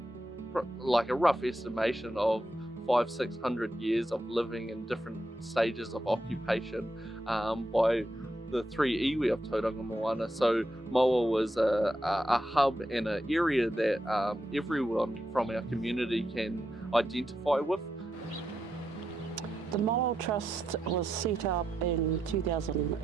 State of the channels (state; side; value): normal; both; correlation 0.84